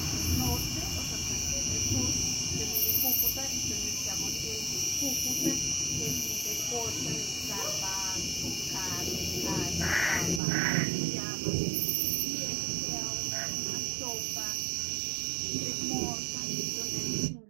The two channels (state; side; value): drops out; left; at 10.4 s